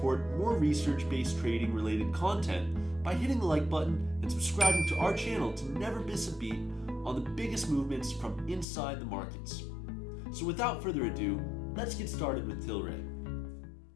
more research-based trading-related content by hitting the like button and subscribing to our channel to never miss a beat on the biggest movements from inside the markets. So without further ado, let's get started with Tilray.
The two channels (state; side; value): drops out; right; at 8.7 s